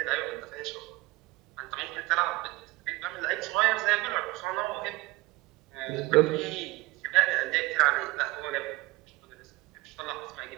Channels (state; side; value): quieter; left; 20.5 dB